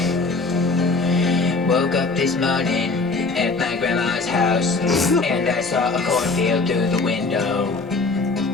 Woke up this morning at my grandma's house and I saw a cornfield through the window.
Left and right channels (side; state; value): right; quieter; 3.7 dB